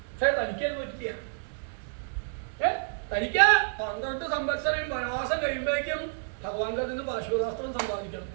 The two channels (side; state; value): left; silent; digital silence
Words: പക്ഷെ തനിക്കത് പറ്റില്ല. തനിക്ക് 12 സംവത്സരം വനവാസം കഴിയുമ്പോഴേക്കും ഭഗവാന്റെ നിന്ന് പാശുപതാസ്ത്രം സമ്പാദിക്കണം.